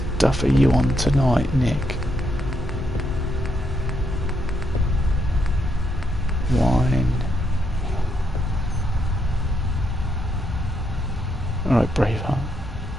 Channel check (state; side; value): normal; both; correlation 0.78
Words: are you on tonight, Nick? Wine. Alright, Braveheart.